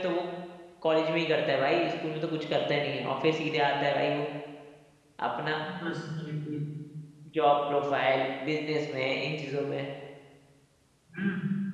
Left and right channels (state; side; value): identical; both; correlation 1.00